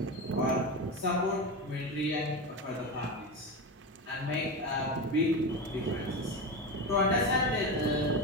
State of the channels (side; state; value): both; normal; correlation 0.19